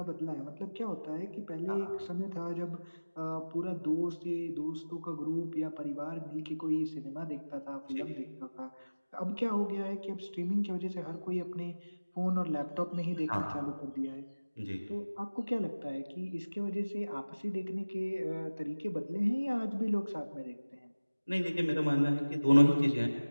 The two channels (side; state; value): both; inverted; correlation -1.00